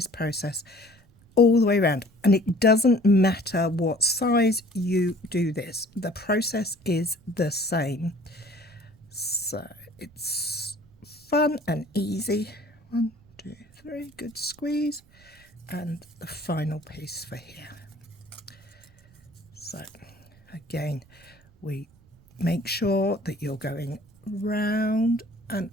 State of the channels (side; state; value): right; noise; rumble, 28 dB below the sound